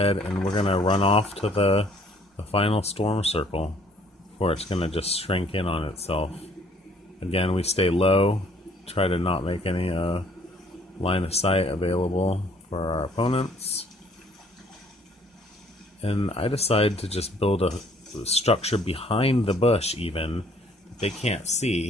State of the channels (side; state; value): both; normal; correlation 0.60